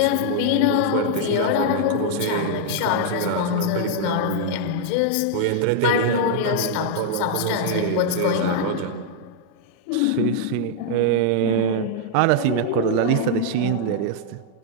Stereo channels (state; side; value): different; both; correlation -0.01